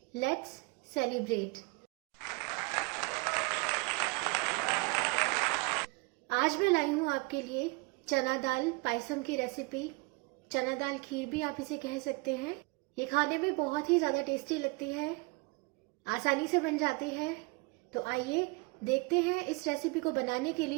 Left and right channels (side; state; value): left; quieter; 27.8 dB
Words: Let's celebrate. आज मैं लाई हूँ आपके लिए चना दाल पायसम की रेसिपी। चना दाल खीर भी आप इसे कह सकते हैं। ये खाने में बहुत ही ज़्यादा टेस्टी लगती है, आसानी से बन जाती है। तो आइए देखते हैं इस रेसिपी को बनाने के